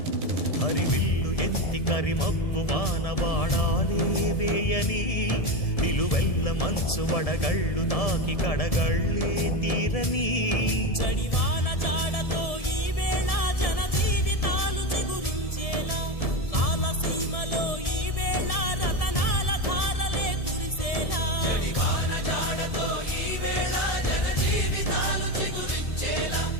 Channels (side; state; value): right; late; 1.7 ms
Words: హరివిల్లు ఎత్తి కరిమబ్బు వానవాడాలే వేయని నిలువెల్ల మంచు వడగళ్ళు తాకి కడగళ్ళే తీరని జడివాన జాడతో ఈ వేళ జన జీవితాలు చిగురించేలా రాలసీమలో ఈ వేళ రతనాల ధారలే కురిసేలా జడివాన జాడతో ఈ వేళ జన జీవితాలు చిగురించేలా